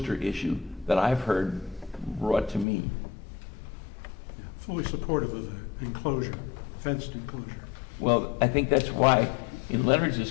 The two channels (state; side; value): drops out; right; at 2.7 s